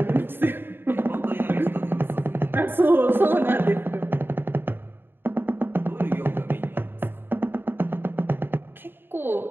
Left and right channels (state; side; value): late; left; 0.10 ms